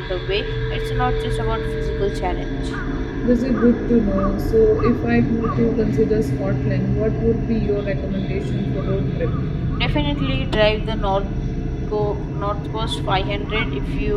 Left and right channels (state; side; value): identical; both; correlation 1.00